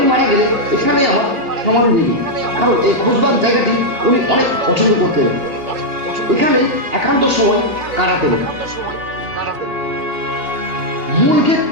মারা গেলে এখানেই আমার সমাধি দিবি, কারণ এই খোশবাগ জায়গাটি উনি অনেক পছন্দ করতেন। এখানেই একান্ত সময় কাটাতেন। মূল গেট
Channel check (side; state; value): left; late; 2.8 ms